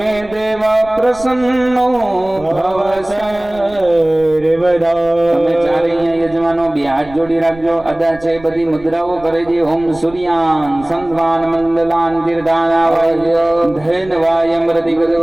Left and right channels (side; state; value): right; noise; rumble, 21 dB below the sound